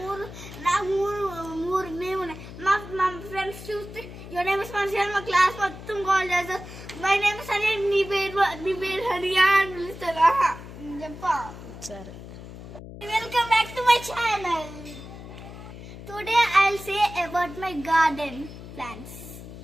మూడు నేమ్ ఉన్నాయి. మా ఫ్రెండ్స్ చూస్తే యువర్ నేమ్ ఇస్ మనిషి మా క్లాస్ మొత్తం కాల్ చేస్తారు. మై నేమ్ ఇస్ హరియా, నీ పేరు హరియా అని పిలుస్తారా చెప్పా. సరే. Welcome back to my channel. Today I'll say about my garden plants.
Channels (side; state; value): left; noise; hum, 13 dB below the sound